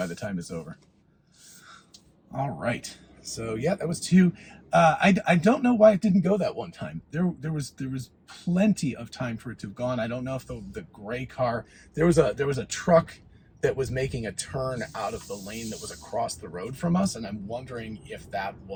the time it's over. All right. So yeah, that was two. I don't know why it didn't go that one time. There was plenty of time for it to have gone. I don't know if the gray car, there was a truck that was making a turn out of the lane that was across the road from us, and I'm wondering if that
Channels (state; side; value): identical; both; correlation 1.00